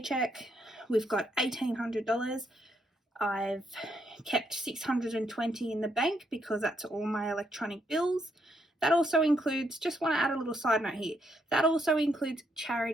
we've got $1,800. I've kept 620 in the bank because that's all my electronic bills. That also includes, just want to add a little side note here, that also includes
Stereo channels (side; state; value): both; normal; correlation 0.76